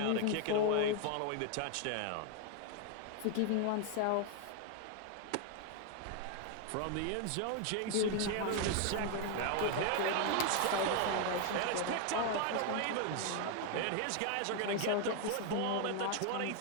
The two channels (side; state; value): both; different; correlation 0.00